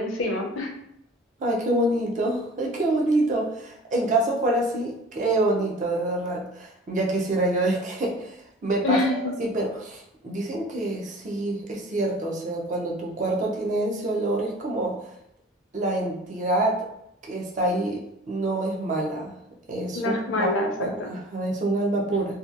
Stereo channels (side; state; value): both; normal; correlation 0.44